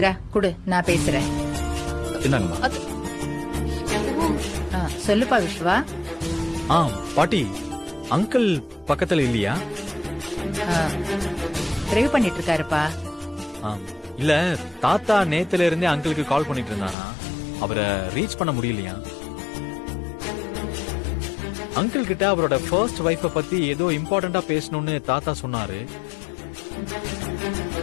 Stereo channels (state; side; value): drops out; right; at 16.9 s